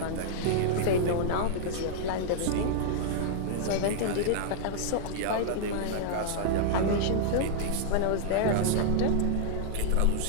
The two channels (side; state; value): both; different; correlation -0.01